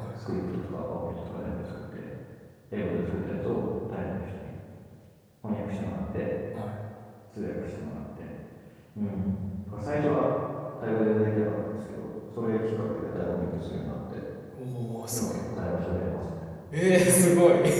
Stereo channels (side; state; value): both; identical; correlation 1.00